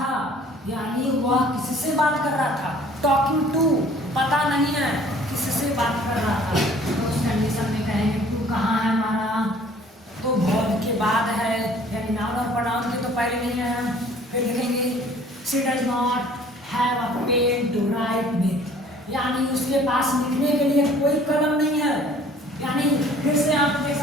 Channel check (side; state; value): both; normal; correlation 0.53